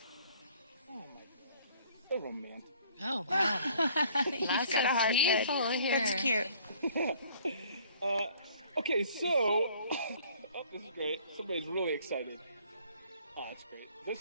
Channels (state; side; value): inverted; both; correlation -0.57